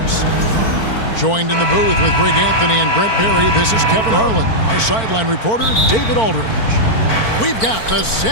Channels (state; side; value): late; right; 4.5 ms